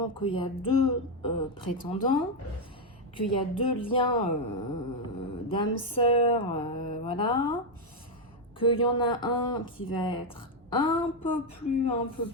qu'il y a deux prétendants, qu'il y a deux liens d'âme sœur, voilà. Qu'il y en a un qui va être un peu plus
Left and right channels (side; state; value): both; normal; correlation 0.03